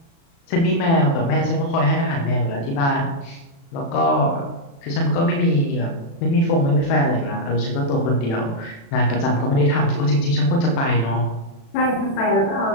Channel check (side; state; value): right; late; 36 ms